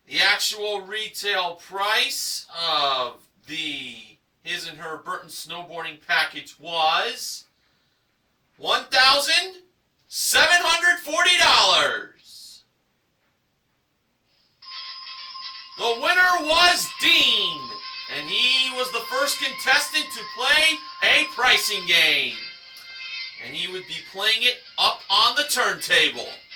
The actual retail price of the his and her Burton snowboarding package was $1,740. The winner was Dean, and he was the first contestant to play a pricing game. And he would be playing it up on the turntable.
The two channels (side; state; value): both; identical; correlation 1.00